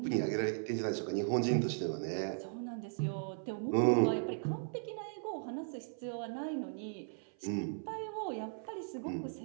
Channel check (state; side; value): silent; left; 53 dB below the other